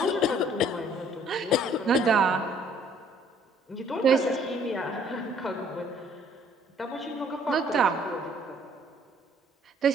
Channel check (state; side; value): normal; both; correlation 0.61